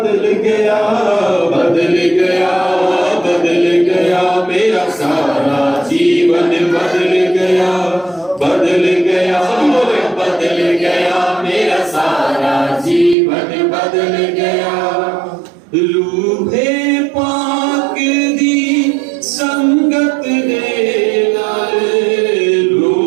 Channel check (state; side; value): drops out; left; at 13.2 s